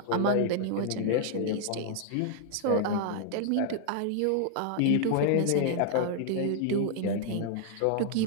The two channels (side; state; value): both; different; correlation 0.00